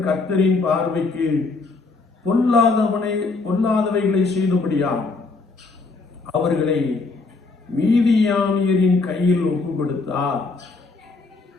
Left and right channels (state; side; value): quieter; right; 3.9 dB